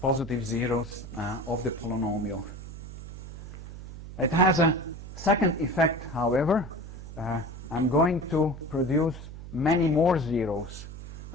positive zeros of the polynomial. It has a second effect, however. I'm going to produce many more zeros.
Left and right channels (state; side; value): noise; right; hum, 12 dB below the sound